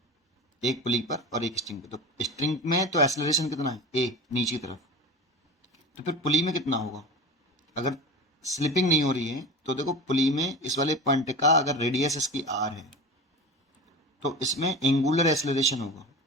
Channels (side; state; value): both; normal; correlation 0.31